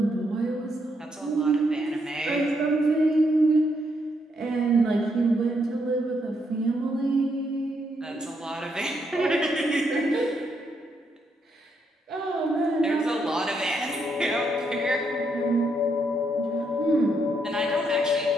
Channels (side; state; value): both; normal; correlation 0.77